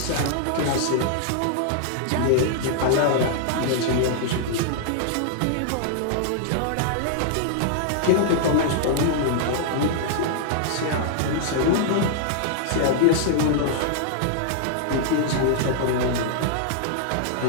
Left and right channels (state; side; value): different; both; correlation -0.01